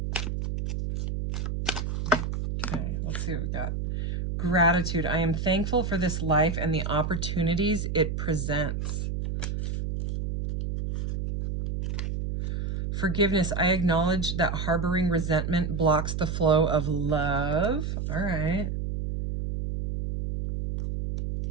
Okay, let's see what we got. Gratitude. I am thankful for this life and the opportunities it presents. Forgiveness. I acknowledge that harboring resentment blocks the flow of love. All right.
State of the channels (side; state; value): right; noise; hum, 2 dB below the sound